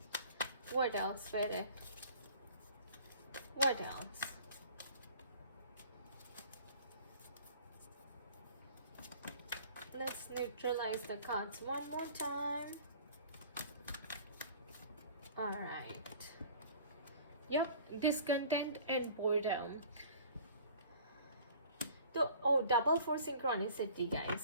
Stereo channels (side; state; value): both; inverted; correlation -0.48